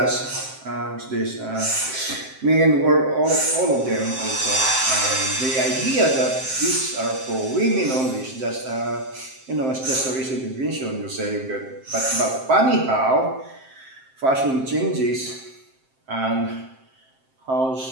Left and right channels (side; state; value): left; late; 7.6 ms